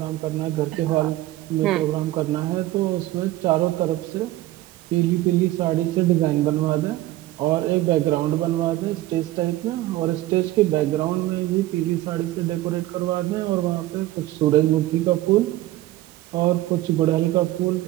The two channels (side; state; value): left; quieter; 16.2 dB